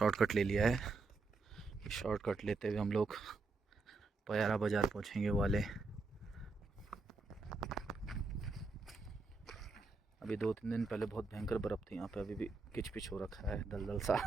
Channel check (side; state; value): left; quieter; 3.8 dB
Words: ले लिया है। शॉर्टकट लेते हुए हम लोग पयारा बाज़ार पहुंचेंगे वाले। अभी 2-3 दिन पहले बहुत भयंकर बर्फ़ थी यहाँ पे, अभी भी किच पिच हो रखा है, दलदल